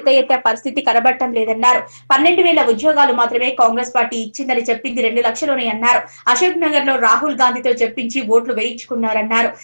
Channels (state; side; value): inverted; both; correlation -1.00